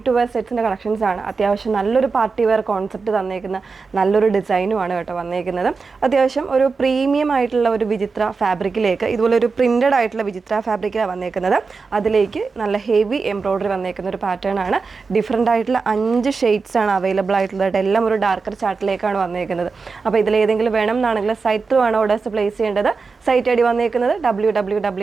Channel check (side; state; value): left; quieter; 4.6 dB